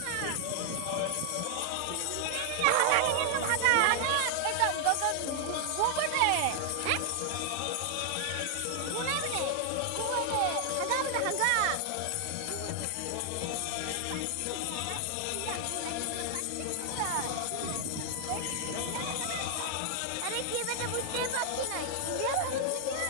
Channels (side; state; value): both; different; correlation 0.00